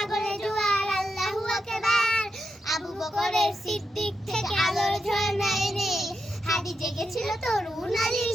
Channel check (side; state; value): both; normal; correlation 0.85